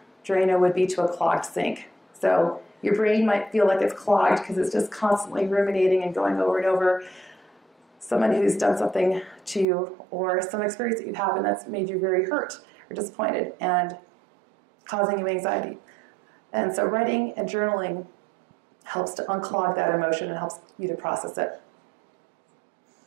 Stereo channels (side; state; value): left; drops out; at 9.7 s